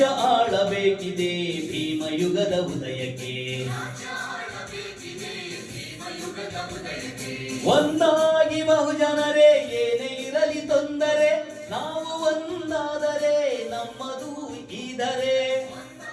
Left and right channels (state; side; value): identical; both; correlation 1.00